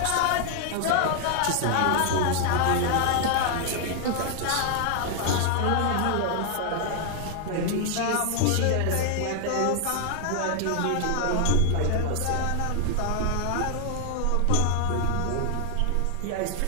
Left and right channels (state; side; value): different; both; correlation 0.00